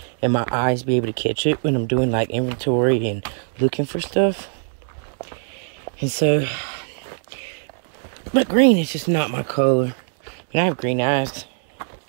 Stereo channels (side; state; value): left; silent; 64 dB below the other